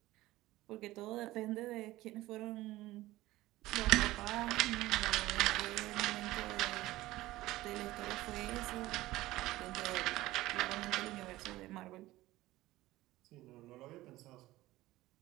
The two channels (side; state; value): left; quieter; 17.3 dB